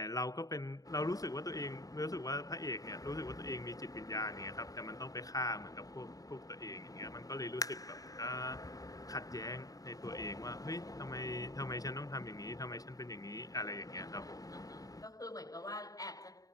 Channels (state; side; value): late; right; 0.17 ms